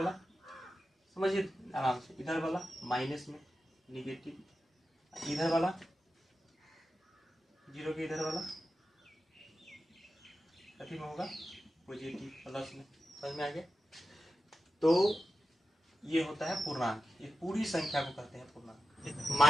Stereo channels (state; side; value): normal; both; correlation 0.92